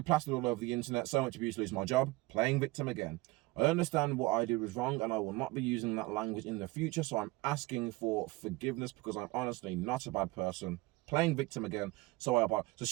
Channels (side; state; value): left; quieter; 21.8 dB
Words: plastered all over the internet, so much abuse, lose my job, playing victim again. I understand what I did was wrong and I will not be using that language in the future, so I'm asking for forgiveness because I'm honestly not a bad person. Playing victim again, so I apologize. So